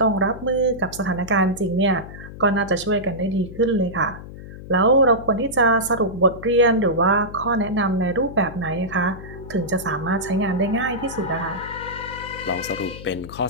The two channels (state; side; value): noise; left; hum, 13 dB below the sound